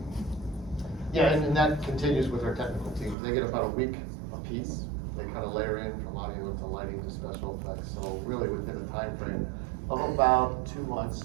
Yeah, and that continues with our technical teams. They get about a week a piece. They kind of layer in from audio to lighting to special effects. So really within a time frame of about 2 months,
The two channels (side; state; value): left; drops out; at 3.2 s